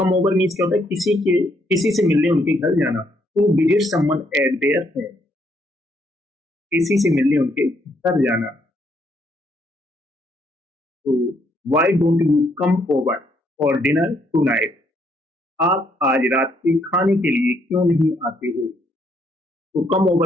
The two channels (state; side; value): normal; both; correlation 0.72